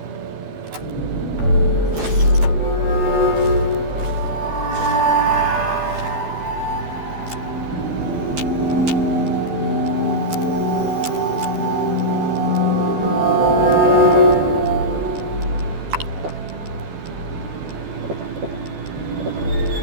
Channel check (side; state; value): left; late; 12 ms